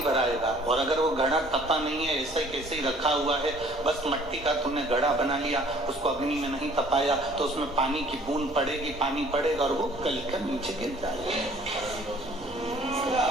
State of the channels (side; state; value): both; normal; correlation 0.54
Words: भराएगा, और अगर वो घड़ा तपा नहीं है, ऐसे कैसे ही रखा हुआ है, बस मट्टी का तुमने घड़ा बना लिया, उसको अग्नि में नहीं तपाया, तो उसमें पानी की बूंद पड़ेगी, पानी पड़ेगा और वो गलकर नीचे गिर जाएगा।